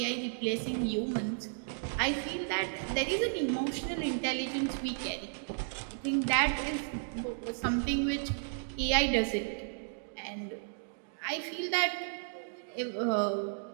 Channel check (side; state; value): left; silent; digital silence